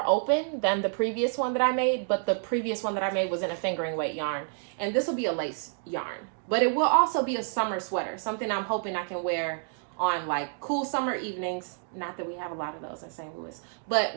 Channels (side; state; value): left; silent; digital silence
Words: open than the previous one that I made, but the previous one that I made was in a fingering weight yarn. And this will be a lace yarn. But it will also be a summer sweater, something I'm hoping I can wear on like cool summer evenings. Not that we have a lot of those in St. Louis, but